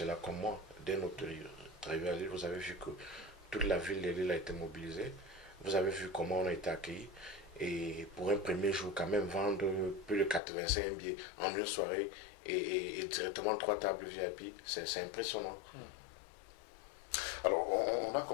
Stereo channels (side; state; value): right; drops out; at 10.4 s